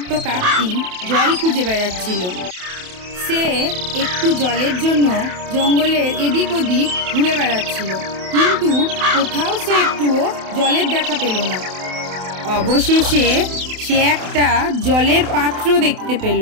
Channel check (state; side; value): late; left; 28 ms